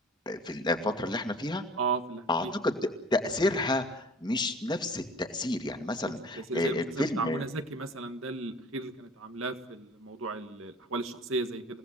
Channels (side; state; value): both; normal; correlation 0.45